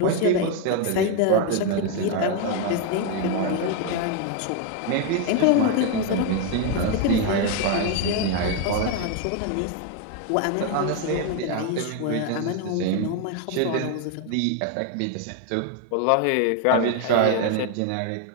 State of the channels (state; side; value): different; both; correlation 0.01